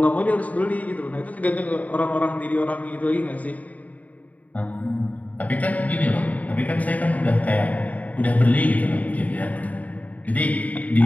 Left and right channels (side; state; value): right; late; 0.072 ms